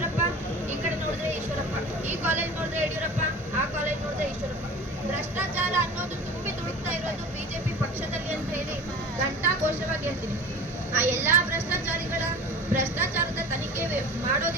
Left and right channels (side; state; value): both; normal; correlation 0.37